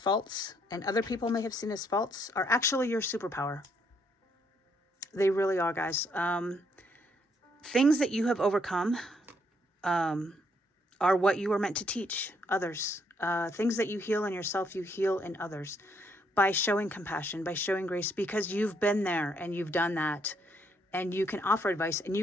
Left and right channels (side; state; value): both; normal; correlation 0.72